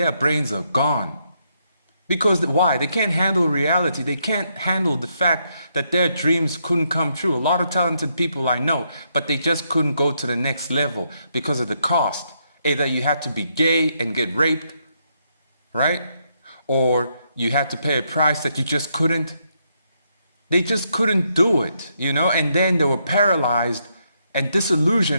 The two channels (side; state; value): both; inverted; correlation -0.77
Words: brains are gone. Because why? They can't handle reality. They can't handle the fact that their dreams couldn't come true. A lot of talented people I know, but they just couldn't go to the next level because of the cost. Either you had to be gay and get raped, right? Or you had to pay a price that you just couldn't. They just couldn't do it, you know? And then they were paralyzed and